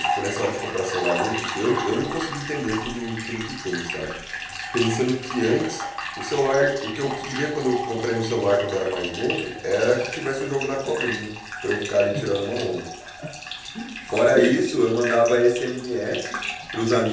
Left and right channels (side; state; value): both; identical; correlation 1.00